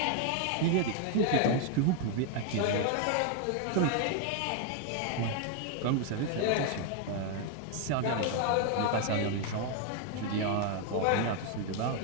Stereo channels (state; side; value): different; both; correlation 0.00